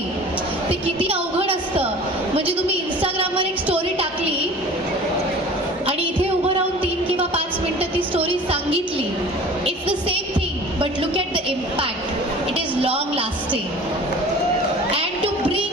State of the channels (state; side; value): normal; both; correlation 0.43